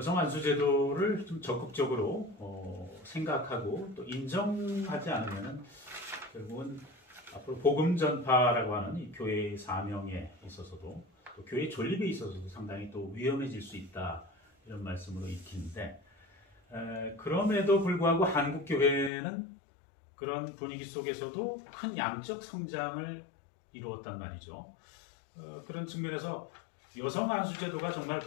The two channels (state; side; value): drops out; right; at 19.1 s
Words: 안수제도를 좀 적극적으로 생각하고 또 인정하지 않으면 결국은 앞으로 복음 전파라고 하는 이 교회의 사명에 있어서도 또 교회 존립에 있어서도 상당히 또 위험해질 수 있다, 이런 말씀으로 읽히는데, 그럼에도 불구하고 한국 교회는 그런 분위기 속에서도 큰 양적 성장을 이루었단 말이죠. 그런 측면에서 여성 안수제도가 정말